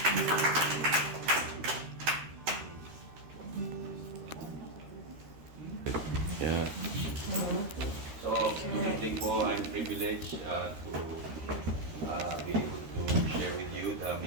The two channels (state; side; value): late; left; 13 ms